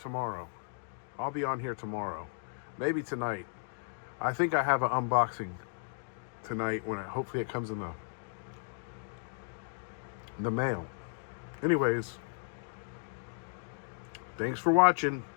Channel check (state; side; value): silent; right; digital silence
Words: I'll be on here tomorrow. Maybe tonight. I think I have an unboxing tonight when hopefully it comes in the mail. Anyways, thanks for watching.